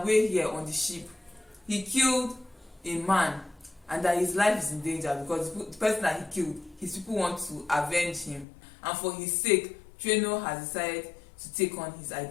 here on the ship, he killed a man and that his life is in danger because the person that he killed, his people want to avenge him, and for his sake, Treno has decided to take on his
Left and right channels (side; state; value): right; drops out; at 8.5 s